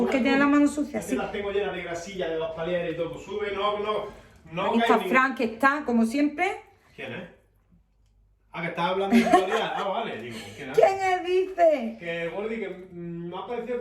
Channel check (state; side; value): identical; both; correlation 1.00